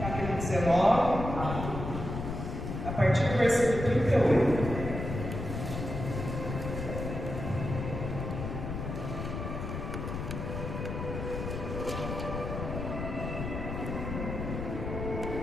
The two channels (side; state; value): left; noise; rumble, 5 dB below the sound